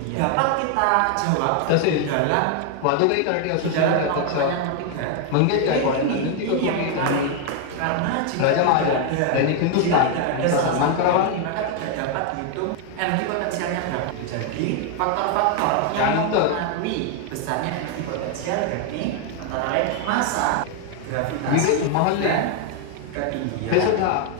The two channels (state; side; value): different; both; correlation 0.00